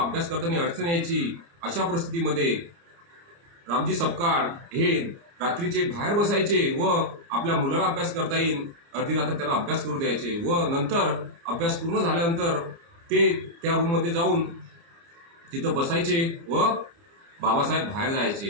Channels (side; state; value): left; late; 29 ms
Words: करताना अडचण यायची। अशा परिस्थितीमध्ये रामजी सपकाळ हे रात्रीचे बाहेर बसायचे व आपल्या मुलाला अभ्यास करता येईल अर्धी रात्र त्याला अभ्यास करू द्यायचे व नंतर अभ्यास पूर्ण झाल्यानंतर ते त्या रूममध्ये जाऊन तिथं बसायचे व बाबासाहेब बाहेर